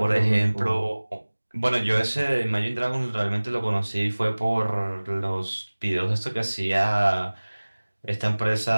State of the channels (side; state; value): both; inverted; correlation -1.00